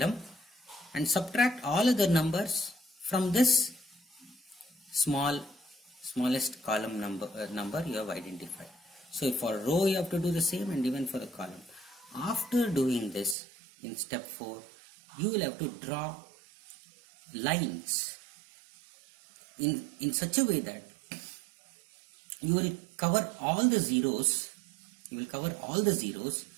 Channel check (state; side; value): drops out; left; at 13.4 s